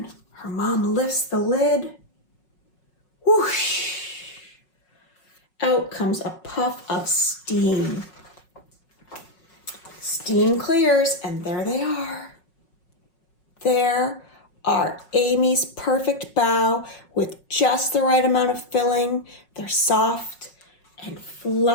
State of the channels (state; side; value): late; right; 5.5 ms